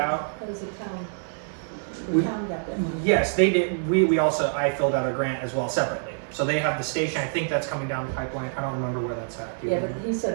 That was the town. We- The town got that money. Yes, they did. I filled out a grant as well separately. So they have the station. I think that's coming down the pipeline. I don't remember where that's at. Do you Yeah, but remember? he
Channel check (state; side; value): silent; left; 61 dB below the other